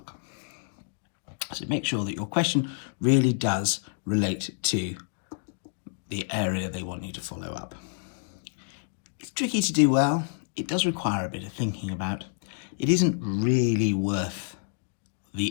So make sure that your question really does relate to the area they want you to follow up. It's tricky to do well. It does require a bit of thinking about. It isn't really worth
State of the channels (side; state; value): right; silent; digital silence